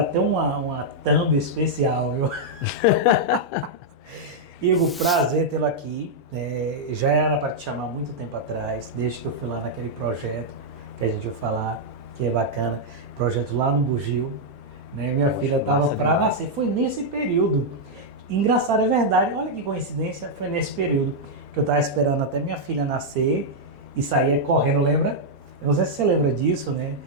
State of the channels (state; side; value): normal; both; correlation -0.04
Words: uma thumb especial, viu? Igor, prazer tê-lo aqui. Já era para te chamar há muito tempo atrás, desde que eu fui lá naquele projeto que a gente vai falar, que é bacana, projeto lá no Bugio. Né? Minha filha estava para nascer, foi nesse período. Engraçado, é verdade, olha que coincidência, foi nesse período que eu estava esperando até minha filha nascer e saía correndo, lembra? Eu não sei se você lembra disso, né?